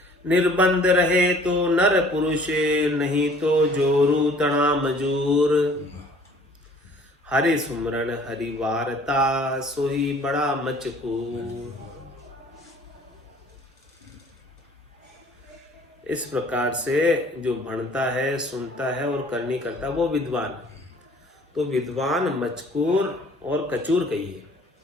निर्बंध रहे तो नर पुरुष, नहीं तो जोरू तना मजूर। हरि सुमरन हरि वारता सोही बड़ा मचकूर। इस प्रकार से जो भणता है, सुनता है और करनी करता है वो विद्वान। तो विद्वान मचकूर और कचूर कहिए।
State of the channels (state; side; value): normal; both; correlation 0.53